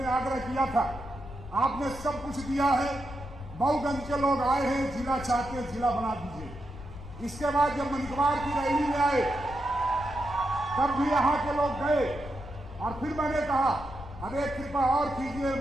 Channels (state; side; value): noise; left; rumble, 13 dB below the sound